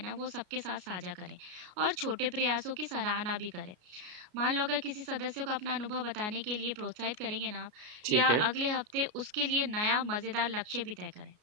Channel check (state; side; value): late; left; 33 ms